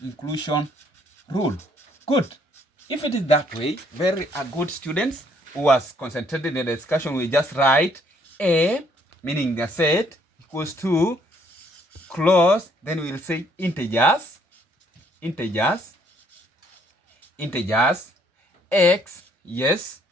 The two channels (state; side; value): normal; both; correlation 0.66